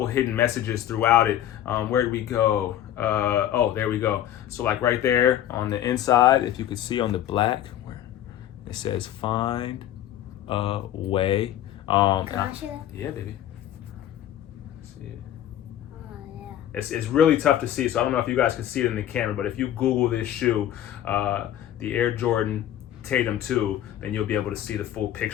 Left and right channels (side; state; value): right; quieter; 11.7 dB